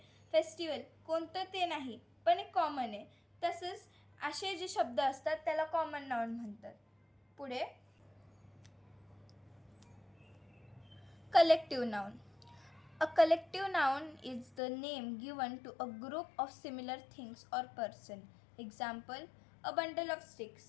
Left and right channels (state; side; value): drops out; right; at 14.6 s